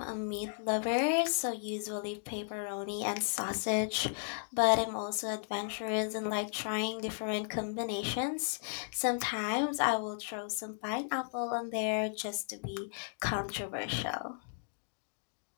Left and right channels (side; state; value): right; silent; digital silence